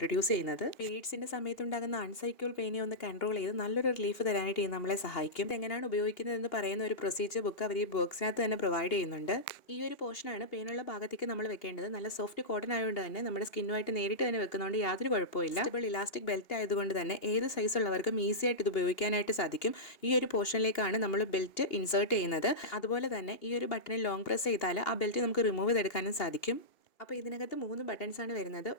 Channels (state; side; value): late; right; 2.8 ms